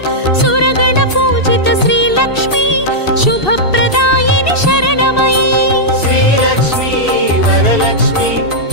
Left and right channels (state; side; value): late; right; 2.7 ms